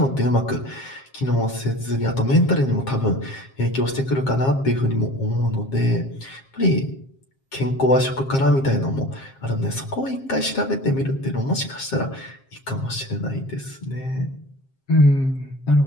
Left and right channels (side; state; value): right; late; 7.5 ms